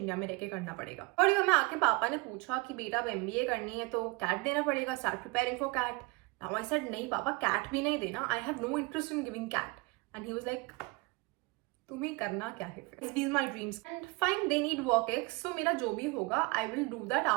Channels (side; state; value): left; quieter; 25.4 dB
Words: में रह के करना पड़ेगा. और मैं आके पापा ने पूछा कि बेटा अब MBA करनी है तो कैट देना पड़ेगा, start preparing for CAT. Now I said नहीं पापा CAT भी नहीं देना, I have no interest in giving CAT. And he was like तुम्हें करना क्या है फिर? These my dreams. And fine, they need work ex. So मेरा जो भी होगा, I will do that